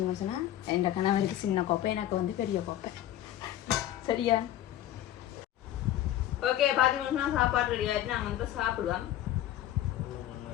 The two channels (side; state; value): right; quieter; 12.6 dB